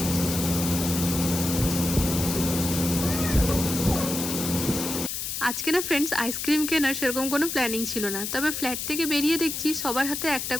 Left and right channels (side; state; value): left; noise; hiss, 4 dB below the sound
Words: আজকে না ফ্রেন্ডস আইসক্রিম কেনার সেরকম কোনো প্ল্যানিং ছিল না, তবে ফ্ল্যাট থেকে বেরিয়ে দেখছি সবার হাতে একটা